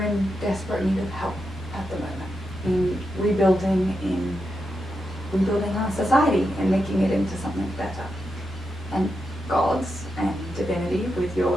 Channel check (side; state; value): both; normal; correlation 0.86